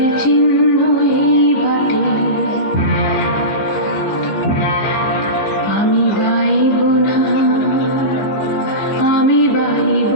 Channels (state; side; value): late; right; 15 ms